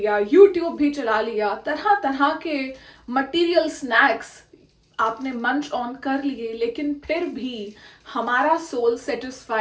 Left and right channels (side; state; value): both; identical; correlation 1.00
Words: यूट्यूब भी चला लिया, तरह तरह के मटेरियल स्नैक्स आपने मंच ऑन कर लिए, लेकिन फिर भी हमारा सोल